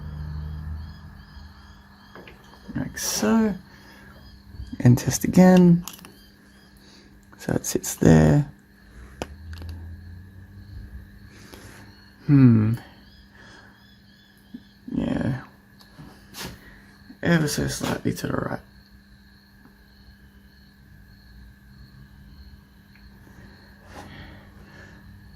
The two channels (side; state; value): both; identical; correlation 1.00